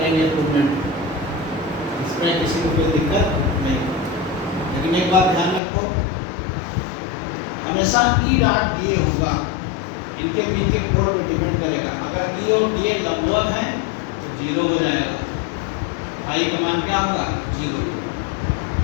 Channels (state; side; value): drops out; right; at 5.6 s